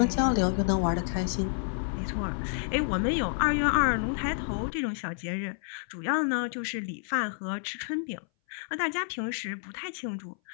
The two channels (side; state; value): right; silent; 58 dB below the other